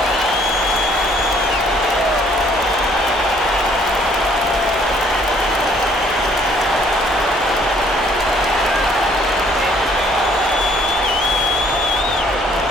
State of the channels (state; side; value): normal; both; correlation 0.62